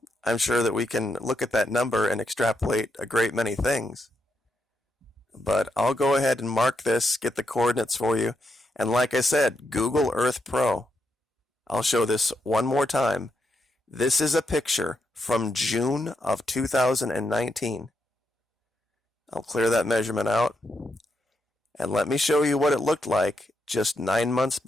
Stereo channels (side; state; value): both; normal; correlation 0.82